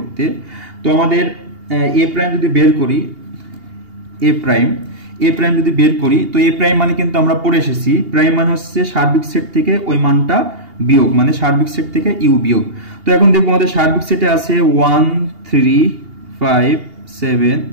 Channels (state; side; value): late; left; 2.8 ms